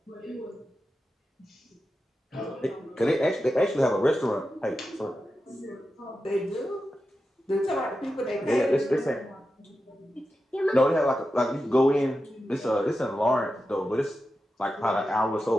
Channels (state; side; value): normal; both; correlation 0.91